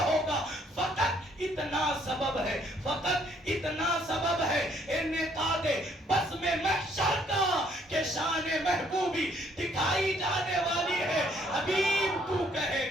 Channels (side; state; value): both; normal; correlation 0.66